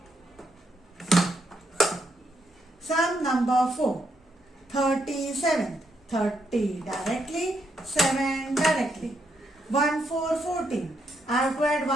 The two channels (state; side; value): normal; both; correlation 0.78